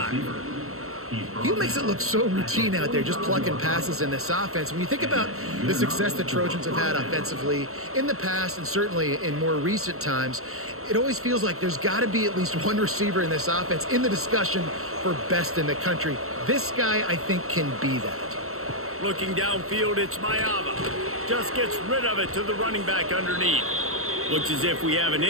He makes it look so routine out there, just plucking passes in this offense. When you think about the success the Trojans have had offensively in the past and certainly in more recent times, it always feels like there's got to be at least one receiver in this offense in the discussion for best in the country. This guy, I think, can be that. Looking downfield, it's Mayava. Just gets rid of it to the running back underneath. Looks as if we have an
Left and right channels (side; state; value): left; late; 0.63 ms